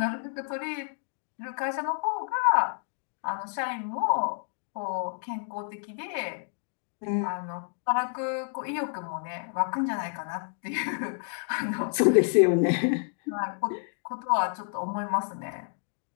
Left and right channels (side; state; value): right; silent; 57 dB below the other